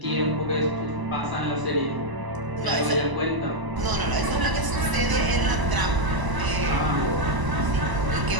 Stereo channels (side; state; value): left; late; 1.0 ms